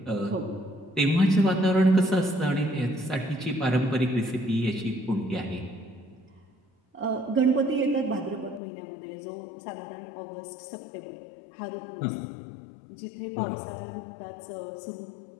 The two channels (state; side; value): drops out; right; at 8.6 s